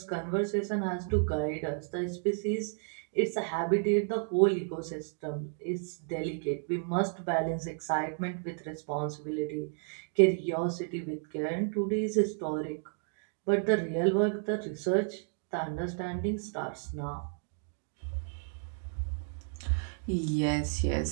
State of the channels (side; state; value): left; silent; 56 dB below the other